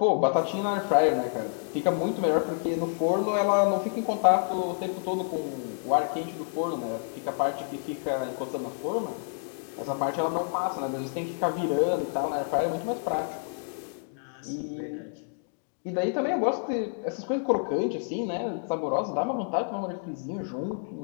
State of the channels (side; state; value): right; silent; digital silence